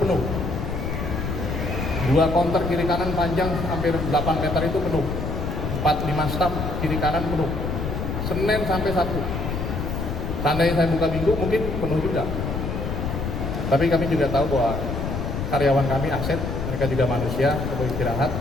2 konter kiri kanan panjang hampir 8 meter itu penuh. 4-5 staf kiri kanan penuh. Senin sampai Sabtu. Seandainya saya buka Minggu mungkin penuh juga. Tapi kami juga tahu bahwa karyawan kami aset, mereka juga manusia, perlu istirahat,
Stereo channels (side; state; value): left; noise; rumble, 3 dB below the sound